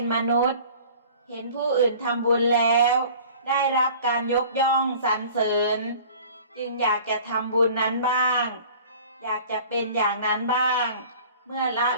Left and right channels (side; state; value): both; inverted; correlation -0.46